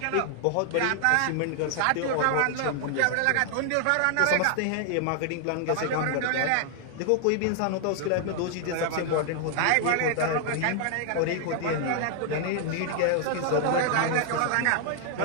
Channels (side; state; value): both; different; correlation 0.00